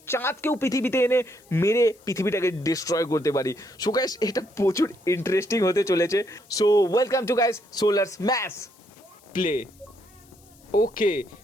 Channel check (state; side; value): noise; left; hiss, 28 dB below the sound